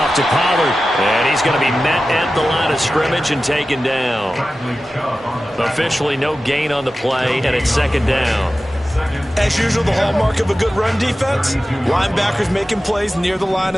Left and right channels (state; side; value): normal; both; correlation 0.94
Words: to Pollard. And he's going to be met at the line of scrimmage and taken down. Officially no gain on the play, and it's second down. As usual, the hallmark of a good run defense, linebackers making plays near the line